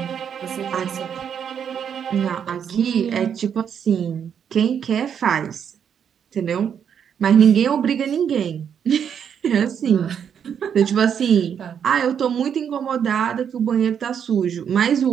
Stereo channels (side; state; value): left; quieter; 8.0 dB